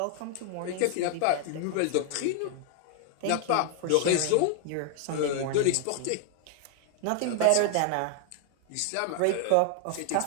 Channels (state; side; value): different; both; correlation 0.00